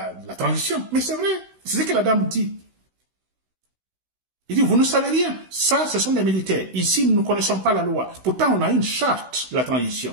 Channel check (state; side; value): late; left; 16 ms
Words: transition. Mais c'est vrai, c'est ce que la dame dit. Il dit, vous ne savez rien, ça, ce sont des militaires. Ici, nous ne connaissons pas la loi. Pourtant, on a une charte de la